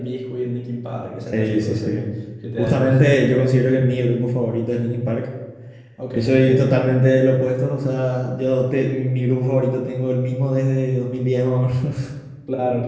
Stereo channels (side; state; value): both; identical; correlation 1.00